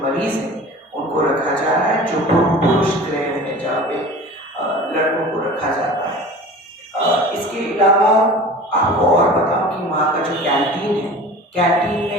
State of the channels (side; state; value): both; normal; correlation 0.39